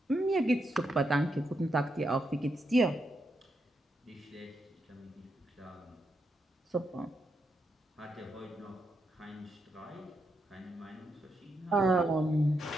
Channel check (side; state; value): both; normal; correlation 0.82